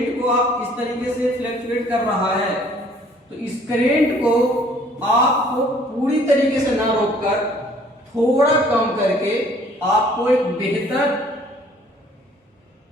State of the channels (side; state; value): both; normal; correlation 0.57